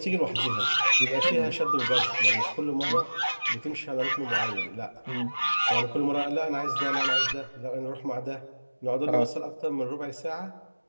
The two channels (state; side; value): inverted; both; correlation -1.00